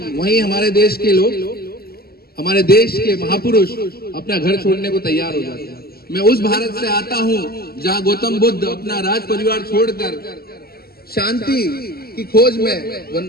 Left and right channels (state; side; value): late; right; 0.45 ms